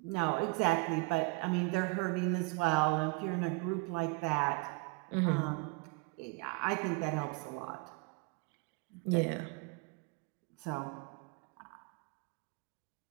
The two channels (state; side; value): quieter; left; 28.3 dB